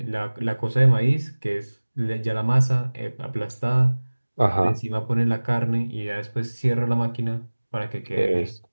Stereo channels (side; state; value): both; inverted; correlation -1.00